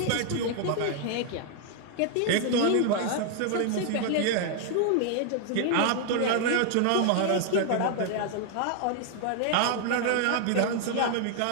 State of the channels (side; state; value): both; different; correlation 0.00